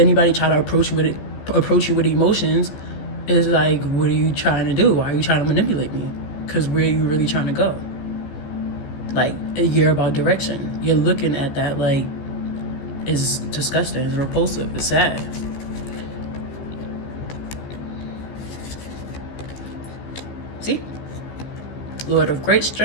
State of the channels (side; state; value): right; late; 14 ms